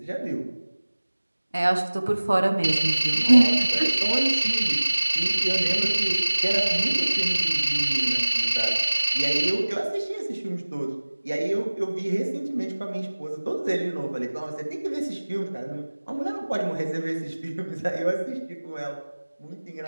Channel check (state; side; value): inverted; both; correlation -1.00